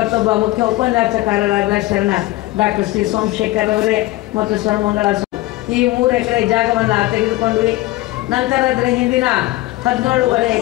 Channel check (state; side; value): quieter; right; 17.9 dB